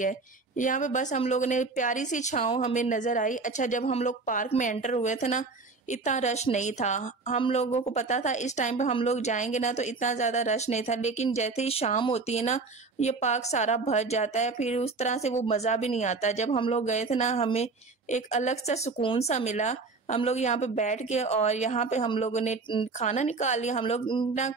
यहाँ पे बस हम लोगों ने प्यारी सी छांव हमें नजर आई। अच्छा, जब हम लोग पार्क में एंटर हुए थे ना, इतना रश नहीं था। हम लोगों को पता था इस टाइम पे हम लोग जाएंगे ना, तो इतना ज्यादा रश नहीं था। लेकिन जैसे ही शाम होती है ना, ये पार्क सारा भर जाता है, फिर उस तरह से वो मजा भी नहीं आता। जब हम लोग गए थे ना, हमें एक अलग सा सुकून सा मिला। हम लोग यहाँ पे बैठ के और यहाँ पे हम लोगों ने खाना निकाल लिया। हम लोग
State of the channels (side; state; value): left; quieter; 4.0 dB